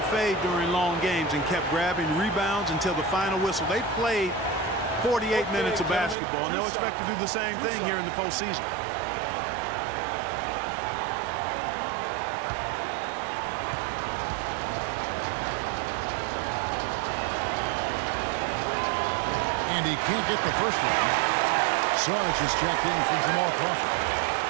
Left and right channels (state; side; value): drops out; left; at 6.2 s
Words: fade during long games and kept grabbing rebounds until the final whistle. They played 48 minutes of basketball, and they'll expect to do the same thing here in the postseason. And he can't get the first one. Sarge is checked in for Jamal Crawford.